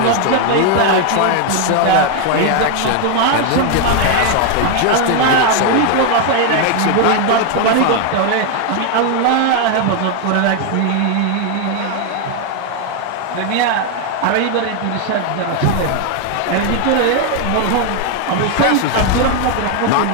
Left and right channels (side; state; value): both; different; correlation 0.01